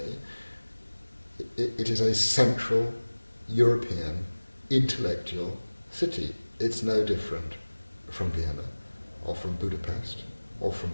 it is a central European intellectual city. It's no different from Vienna or from Budapest or from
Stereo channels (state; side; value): inverted; both; correlation -1.00